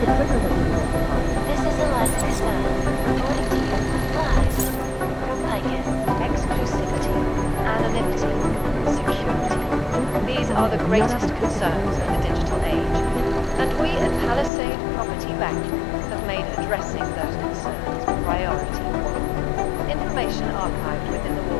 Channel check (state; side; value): drops out; right; at 14.5 s